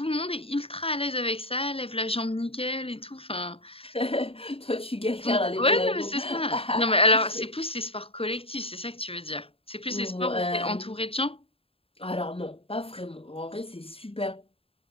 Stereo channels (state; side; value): late; right; 0.27 ms